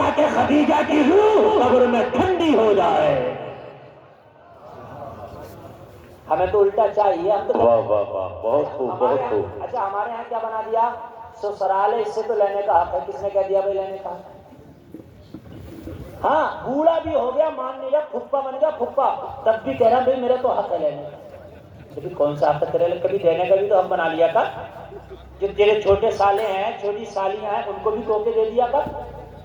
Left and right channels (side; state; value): both; identical; correlation 1.00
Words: خدیجہ کی روح قبر میں ٹھنڈی ہو جائے. ہمیں تو الٹا چاہیے. ہم تو واہ واہ واہ, بہت خوب بہت خوب. اچھا ہمارے یہاں کیا بنا دیا, سسرال ہے اس سے تو لینے کا حق ہے. کس نے کہہ دیا بھائی لینے کا؟ ہاں بوڑھا بھی ہو گیا مان لیا, پھپھا بن گیا پھپھا, تب بھی کہہ رہا بھائی میرا تو حق ہے لینے کا. لیکن کون سا حق ہے تیرے, کبھی دینے کا بھی تو حق بنا لیا کر. جو تیرے چھوٹے سالے ہیں چھوٹی سالیاں ہیں ان کو بھی تحفے دے دیا کر,